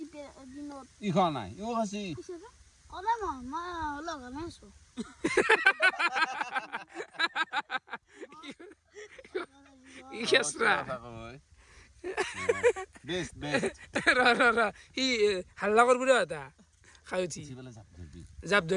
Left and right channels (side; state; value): both; identical; correlation 1.00